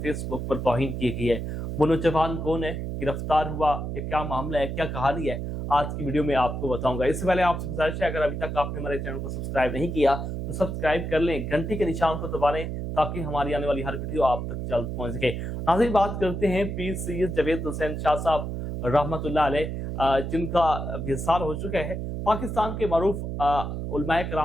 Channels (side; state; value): right; noise; hum, 4 dB below the sound